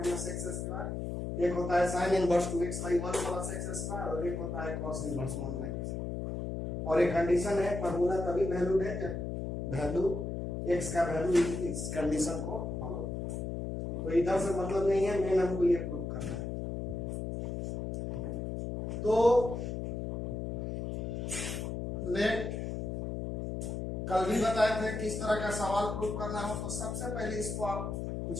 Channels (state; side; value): noise; left; hum, 4 dB below the sound